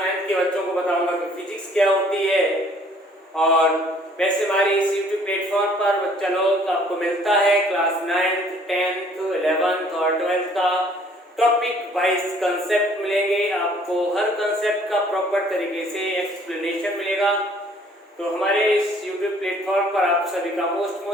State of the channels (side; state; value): both; normal; correlation 0.58